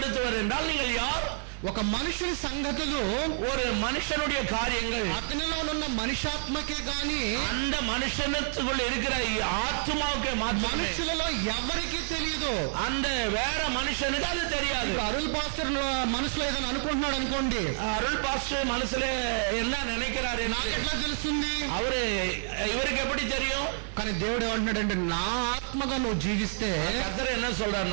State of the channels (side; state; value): left; silent; 55 dB below the other